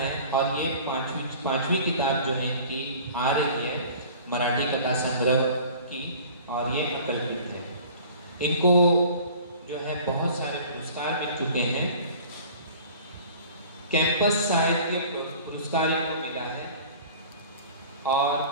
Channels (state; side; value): inverted; both; correlation -0.45